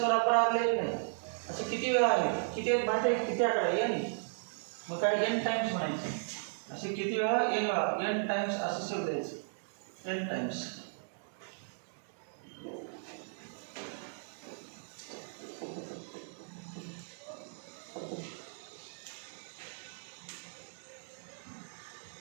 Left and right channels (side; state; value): left; silent; digital silence